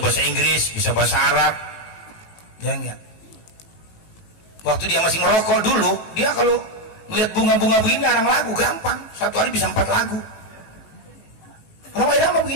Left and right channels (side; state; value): right; late; 18 ms